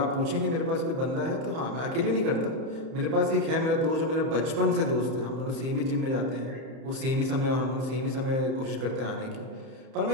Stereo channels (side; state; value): left; late; 31 ms